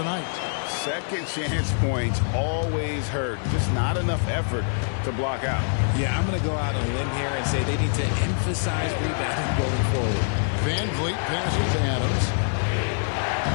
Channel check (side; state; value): right; silent; 62 dB below the other